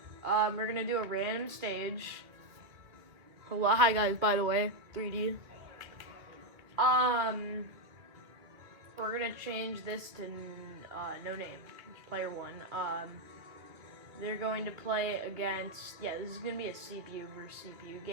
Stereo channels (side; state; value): left; late; 2.3 ms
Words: We're going to do a random stage. Hello. Hi, guys, by the way. 3D. We're gonna change this to no name. It's player 1. They're going to play against... Yeah, this is gonna be a CPU versus CPU